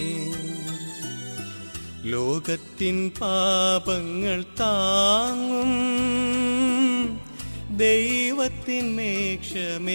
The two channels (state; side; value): inverted; both; correlation -1.00